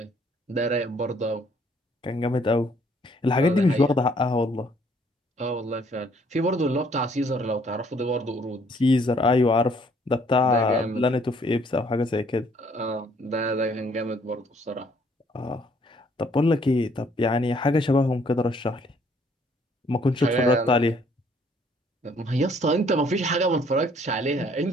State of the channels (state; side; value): normal; both; correlation 0.63